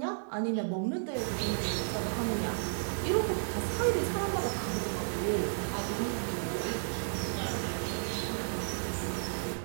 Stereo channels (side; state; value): left; silent; digital silence